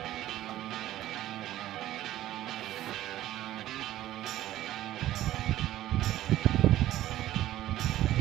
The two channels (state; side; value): quieter; left; 14.1 dB